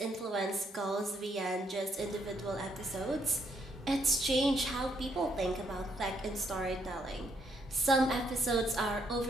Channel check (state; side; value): normal; both; correlation 0.73